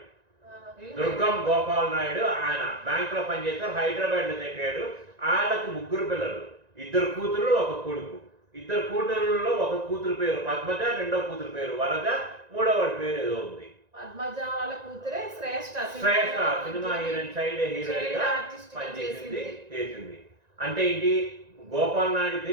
దుర్గం గోపాల్ నాయుడు. ఆయన బ్యాంకులో పనిచేస్తారు, హైదరాబాద్లో సెటిల్ అయ్యాడు. ఆయనకు 3 పిల్లలు, 2 కూతురు 1 కొడుకు. 2 కూతురులో 1 కూతురు పేరు పద్మజ, 2వ కూతురు పేరు వరద, 3వ వాడి పేరు ఏదో ఉంది. పద్మజ వాళ్ళ కూతురే శ్రేష్ఠ సినిమా హీరోయిన్, సైడ్ హీరోయిన్ గా చేసింది. అంటే ఏంటి? గోపాల్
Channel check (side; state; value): left; late; 1.9 ms